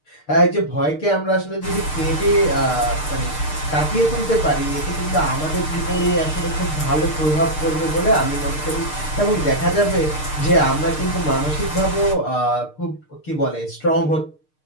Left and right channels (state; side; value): late; right; 6.6 ms